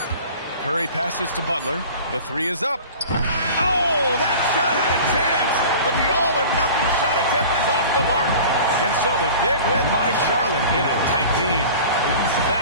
Curry passes to Butler. The three is up. Oh, that shot had a chance, but the all-or-nothing shot attempt is off the mark. And so the big win by Charlotte in a tight game.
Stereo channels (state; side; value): inverted; both; correlation -0.41